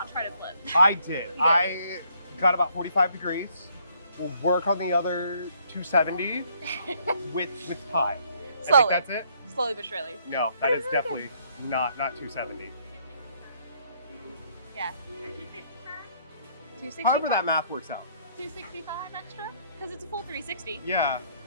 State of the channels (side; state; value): both; inverted; correlation -0.67